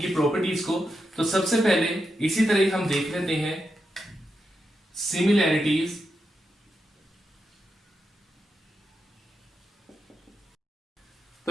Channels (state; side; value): normal; both; correlation 0.86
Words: प्रॉपर्टीज को, तो सबसे पहले इसी तरह हम देख लेते हैं सिमिलैरिटीज।